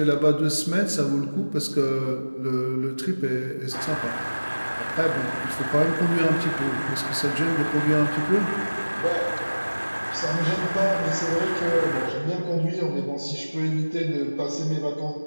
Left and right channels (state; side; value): inverted; both; correlation -1.00